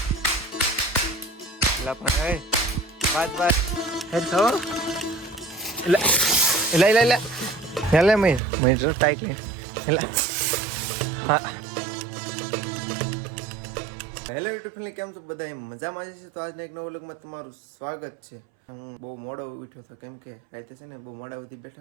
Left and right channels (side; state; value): left; drops out; at 8.4 s